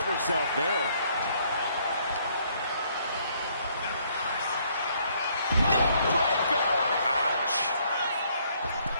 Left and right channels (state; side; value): inverted; both; correlation -0.66